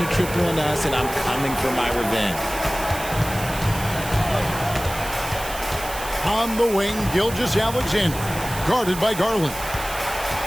triple on us, and I'm coming for my revenge. On the wing, Gilgeous-Alexander. Guarded by Garland.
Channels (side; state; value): right; noise; hiss, 11 dB below the sound